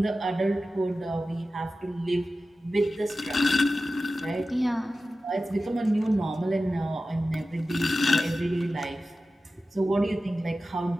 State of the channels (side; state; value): both; normal; correlation 0.94